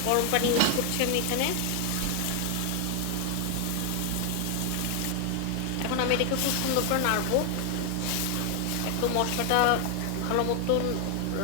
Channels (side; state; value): both; different; correlation 0.00